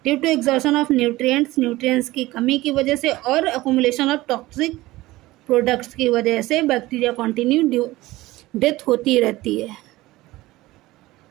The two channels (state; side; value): quieter; left; 18.4 dB